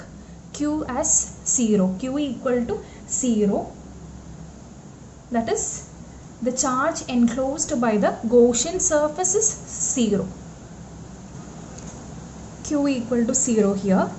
Q as 0. Q equal to 0. That is, the charge enclosed by the Gaussian surface is 0. Q equal to 0 here,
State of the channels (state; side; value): identical; both; correlation 1.00